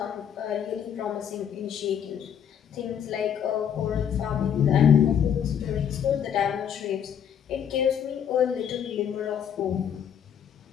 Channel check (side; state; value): right; quieter; 8.6 dB